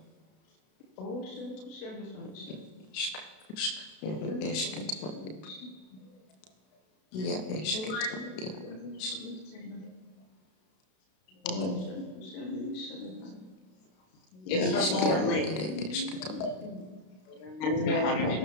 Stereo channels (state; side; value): late; right; 32 ms